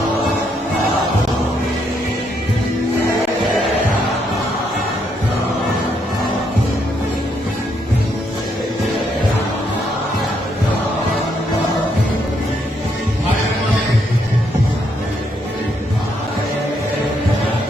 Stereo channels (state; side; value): normal; both; correlation 0.75